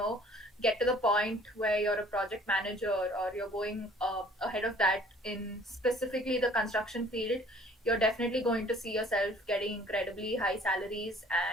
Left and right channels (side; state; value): both; normal; correlation 0.54